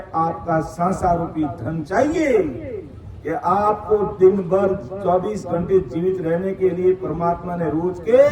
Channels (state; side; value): identical; both; correlation 1.00